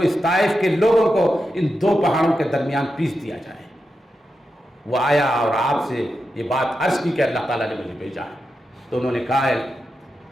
طائف کے لوگوں کو ان 2 پہاڑوں کے درمیان پیس دیا جائے۔ وہ آیا اور آپ سے یہ بات عرض کی کہ اللہ تعالیٰ نے مجھے بھیجا ہے، تو انہوں نے کہا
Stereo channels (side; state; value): both; normal; correlation 0.89